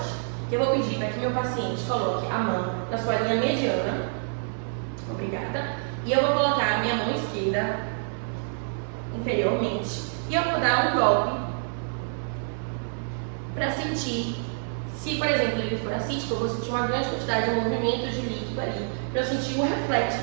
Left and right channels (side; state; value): left; silent; 60 dB below the other